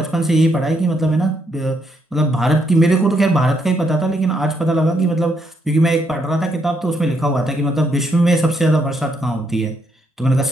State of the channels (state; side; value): normal; both; correlation 0.75